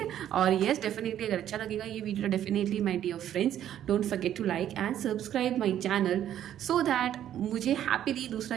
और येस, डेफिनेटली अगर अच्छा लगेगा ये video, definitely my dear friends don't forget to like and subscribe my channel, so that मुझे हैप्पीली दूसरा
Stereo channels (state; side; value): quieter; left; 11.0 dB